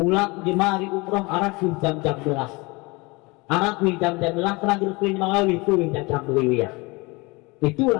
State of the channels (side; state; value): right; quieter; 25.4 dB